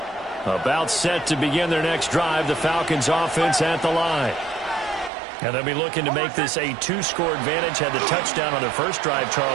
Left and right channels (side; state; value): left; drops out; at 5.1 s